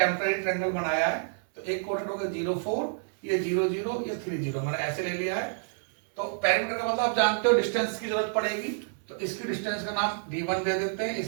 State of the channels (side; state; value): left; silent; 59 dB below the other